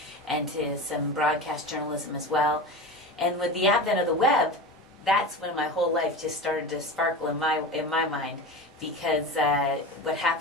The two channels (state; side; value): normal; both; correlation 0.29